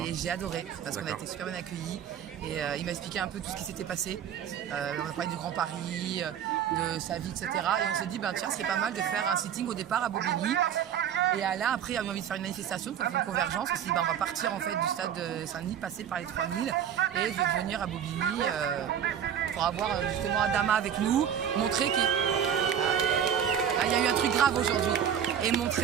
Et j'ai adoré parce qu'on a été super bien accueillis et il m'a expliqué un peu tout ce qui s'était passé. On a parlé du Grand Paris, de sa vie, etc. Et on s'est dit, tiens, c'est pas mal de faire un sitting au départ à Bobigny. Et là, après, il a eu envie de faire une manifestation, de faire une convergence. On s'est dit, on va partir en fait du stade de Saint-Denis, passer par les 3000 et de venir à Bobigny pour avoir justement Adama avec nous, montrer qu'il y a eu un truc grave aujourd'hui. Et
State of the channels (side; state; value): left; quieter; 8.9 dB